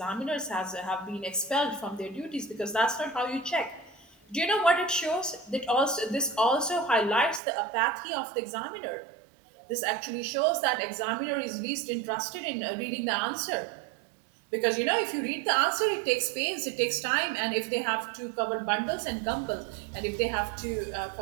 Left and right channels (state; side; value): drops out; left; at 7.4 s